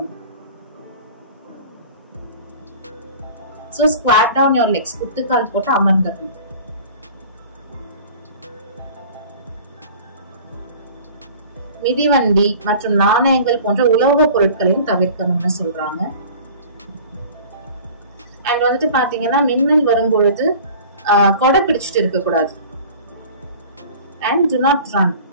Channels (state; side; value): inverted; both; correlation -0.43